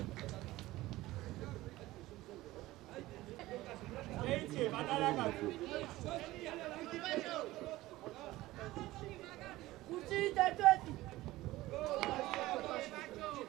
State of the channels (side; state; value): left; quieter; 17.6 dB